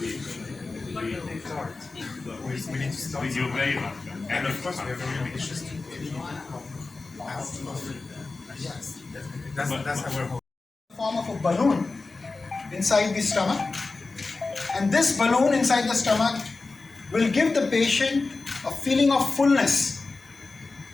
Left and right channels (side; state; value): right; quieter; 3.8 dB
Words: We need to start. You're very welcome. And of course, we have really issues to yes, that's our hope. Form of a balloon inside the stomach, and this balloon inside the stomach will give the patient a feeling of fullness,